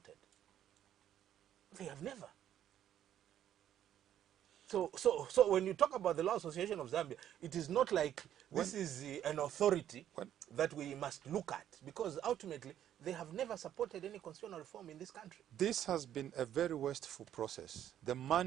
They have never. So when you talk about the Law Association of Zambia, it is not like this is an authority that we must look at, because ultimately they have never supported any constitutional reform in this country. This has been a very wasteful process. The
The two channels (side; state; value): left; quieter; 10.8 dB